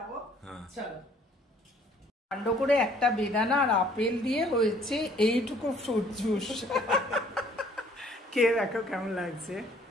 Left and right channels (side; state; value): both; normal; correlation 0.59